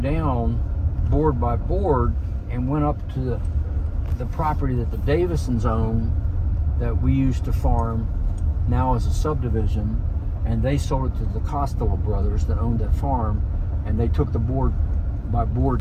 board by board and went up to the property that the Davisons own, that we used to farm now as a subdivision, and they sold it to the Costello brothers that owned that farm, and they took the board by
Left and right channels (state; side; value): identical; both; correlation 1.00